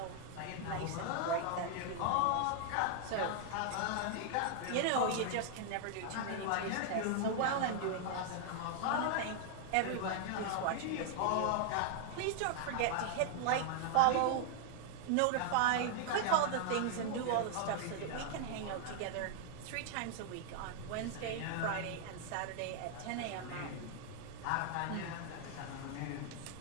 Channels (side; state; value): both; different; correlation 0.00